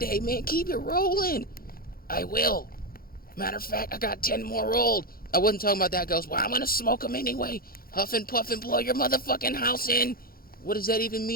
man. Keep it rolling. I will. Matter of fact, I got 10 more rolled. I wasn't talking about that, Ghost. Well, I'm gonna smoke them anyway. Huff and puff and blow your motherfucking house in. What does that even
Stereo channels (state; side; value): late; right; 0.43 ms